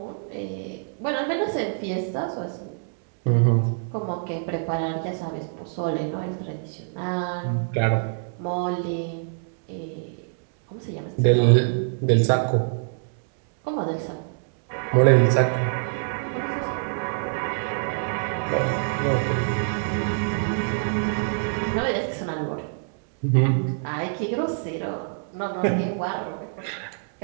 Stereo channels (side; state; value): left; silent; 62 dB below the other